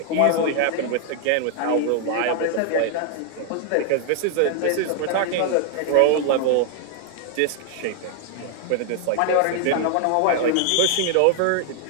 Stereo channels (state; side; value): different; both; correlation 0.00